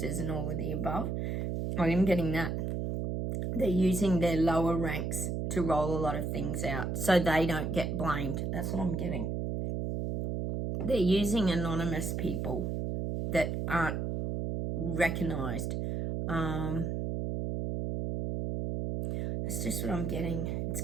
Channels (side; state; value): right; noise; hum, 1 dB below the sound